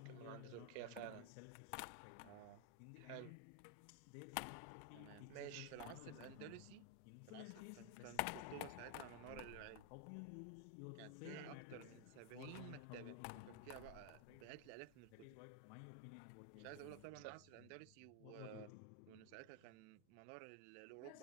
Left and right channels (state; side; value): different; both; correlation 0.00